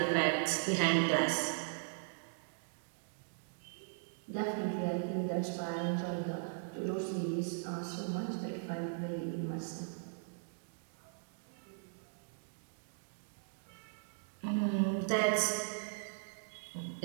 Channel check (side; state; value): left; silent; digital silence